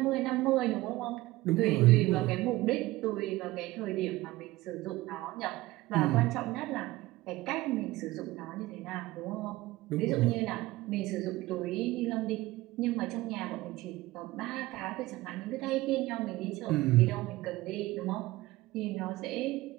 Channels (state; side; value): quieter; left; 18.5 dB